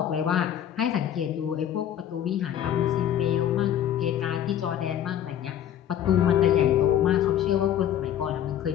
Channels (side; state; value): right; quieter; 10.6 dB